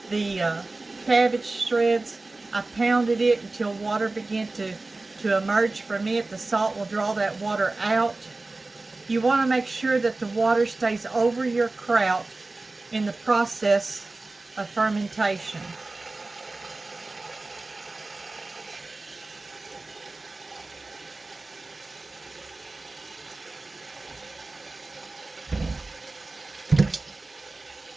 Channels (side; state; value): left; quieter; 3.2 dB